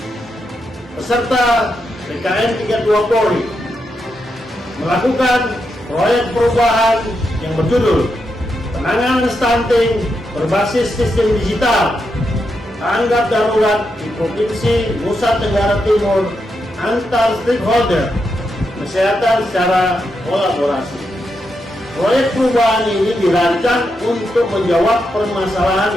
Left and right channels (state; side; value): normal; both; correlation 0.84